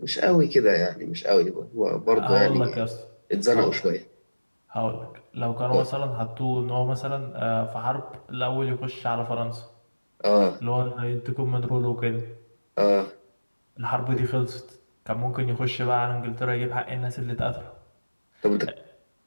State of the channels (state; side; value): inverted; both; correlation -1.00